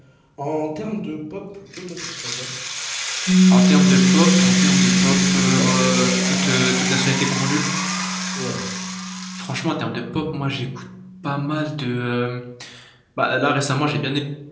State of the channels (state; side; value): identical; both; correlation 1.00